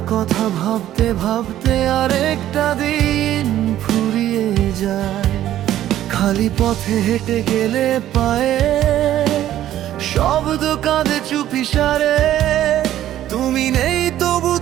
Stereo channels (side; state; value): left; quieter; 12.6 dB